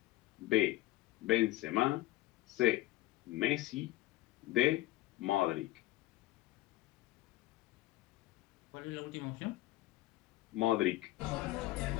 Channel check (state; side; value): quieter; right; 17.4 dB